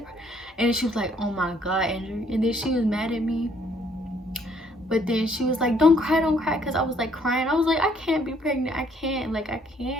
and she was like, oh my god, Andrew. And then she was mad at me, but then she was like, don't cry, because I was like crying. I was like, I can't be pregnant, I can't, like, I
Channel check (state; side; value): normal; both; correlation 0.65